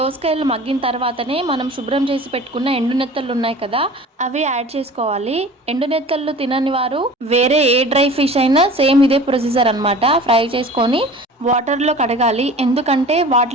దోసకాయలు మగ్గిన తర్వాతనే మనం శుభ్రం చేసి పెట్టుకున్న ఎండు నెత్తళ్ళు ఉన్నాయి కదా, అవి యాడ్ చేసుకోవాలి. ఎండు నెత్తళ్ళు తినని వారు వేరే ఏ డ్రై ఫిష్ అయినా సేమ్ ఇదే ప్రొసీజర్ అనమాట. ఫ్రై చేసుకొని వాటర్లో కడగాలి. ఎందుకంటే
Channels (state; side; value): normal; both; correlation 0.41